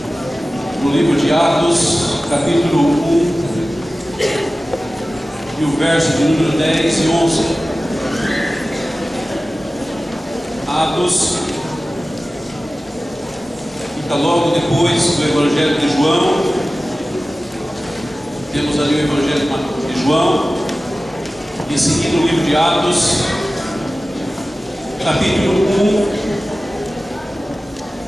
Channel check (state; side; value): normal; both; correlation 0.96